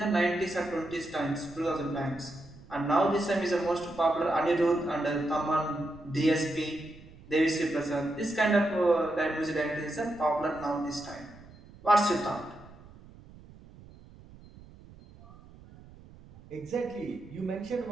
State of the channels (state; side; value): noise; right; rumble, 21 dB below the sound